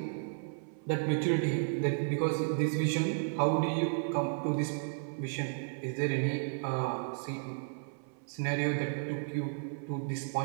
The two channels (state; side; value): silent; left; 56 dB below the other